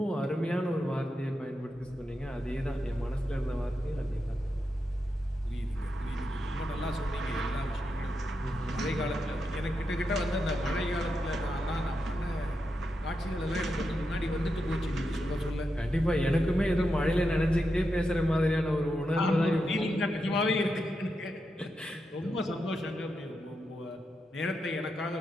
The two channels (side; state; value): both; normal; correlation 0.86